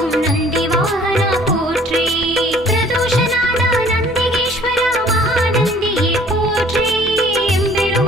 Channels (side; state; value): both; normal; correlation 0.54